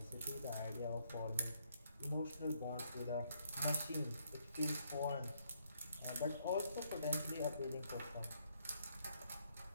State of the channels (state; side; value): inverted; both; correlation -0.72